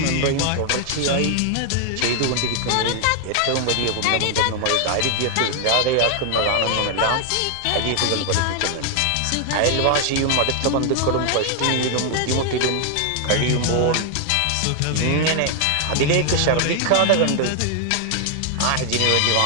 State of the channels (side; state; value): both; different; correlation 0.00